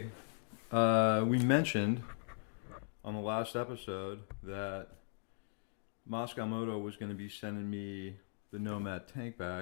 we mentioned on the last episode that Mosko Moto was going to be sending me the Nomad tank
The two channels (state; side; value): silent; right; digital silence